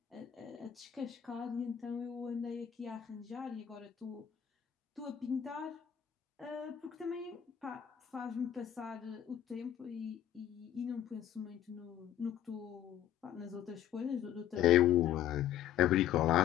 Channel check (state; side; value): quieter; right; 10.6 dB